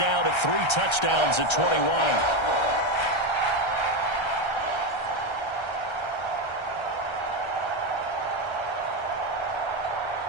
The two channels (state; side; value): late; right; 1.3 ms